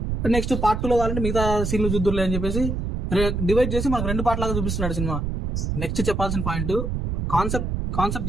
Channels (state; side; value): noise; right; rumble, 2 dB below the sound